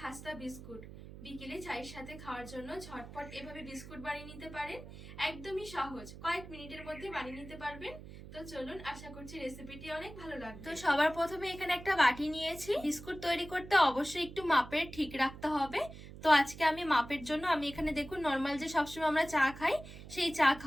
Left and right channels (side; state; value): right; noise; hum, 14 dB below the sound